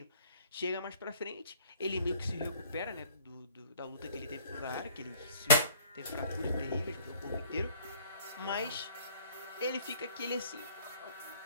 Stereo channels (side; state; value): both; inverted; correlation -0.55